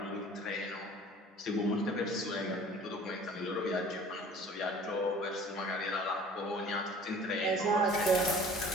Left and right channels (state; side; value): normal; both; correlation 0.48